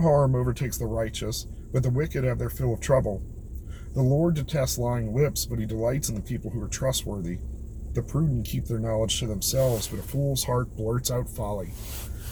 overtakes the righteous, but the wicked have their fill of trouble. The Lord detests lying lips, but he delights in the people who are trustworthy. The prudent keep their knowledge to themselves, but a fool's heart blurts out folly.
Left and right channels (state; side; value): identical; both; correlation 1.00